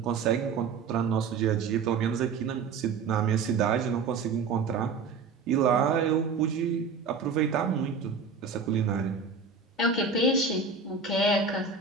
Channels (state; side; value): quieter; left; 5.1 dB